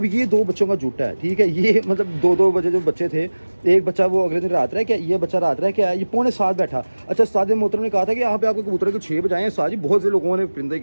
ये 2 बच्चों का जुटा है, ठीक है, ये मतलब 2-2 बजे जो बच्चे थे, एक बच्चा वो अगले दिन रात रह क्या, ये बच्चा रात रह क्या, ये 6:45 बैठा। अच्छा, उस्ताद मोहतरम ने कहा था कि यहाँ पे आपके कबूतर को 6 बजे आए हैं। उस्ताद जी, बहुत से लोगों ने परिंदे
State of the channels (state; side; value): inverted; both; correlation -1.00